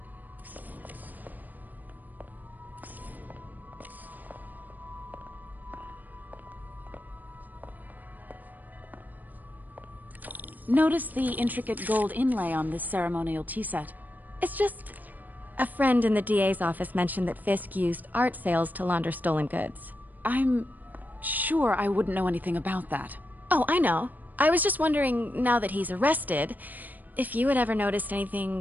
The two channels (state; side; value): late; left; 0.084 ms